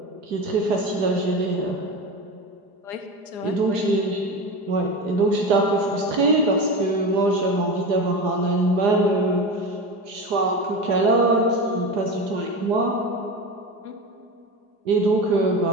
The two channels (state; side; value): late; left; 4.9 ms